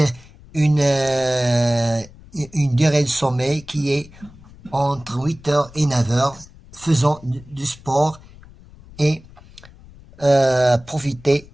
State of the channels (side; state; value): left; noise; rumble, 22 dB below the sound